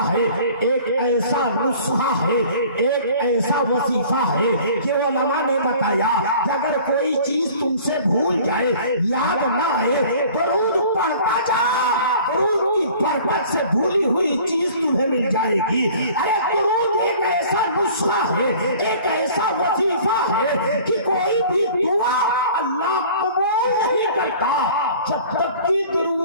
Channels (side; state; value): both; inverted; correlation -0.48